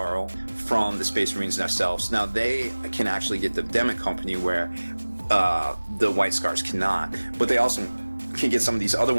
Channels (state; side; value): inverted; both; correlation -1.00